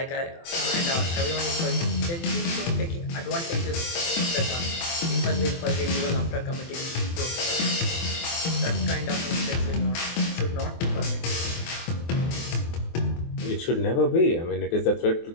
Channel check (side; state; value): right; late; 24 ms